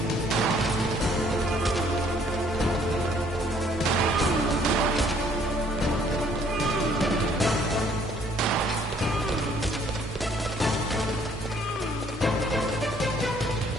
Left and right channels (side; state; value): both; normal; correlation 0.62